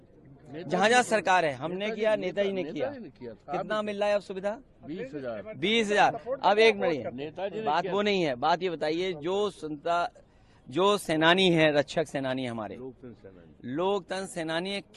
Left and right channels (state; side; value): identical; both; correlation 1.00